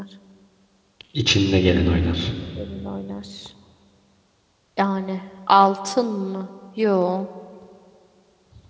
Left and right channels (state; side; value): identical; both; correlation 1.00